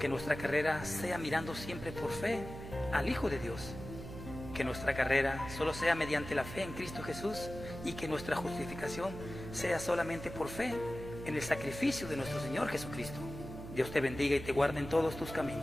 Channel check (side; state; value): right; noise; hum, 11 dB below the sound